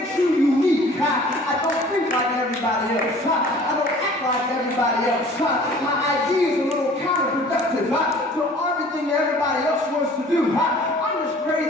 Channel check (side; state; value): both; normal; correlation 0.49